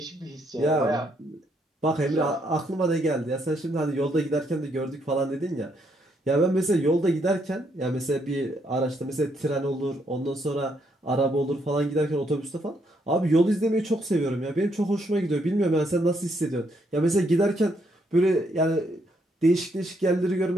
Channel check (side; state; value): both; normal; correlation 0.74